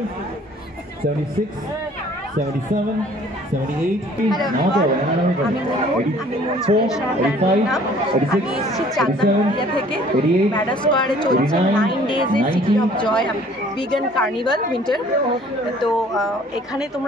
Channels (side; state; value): both; normal; correlation 0.54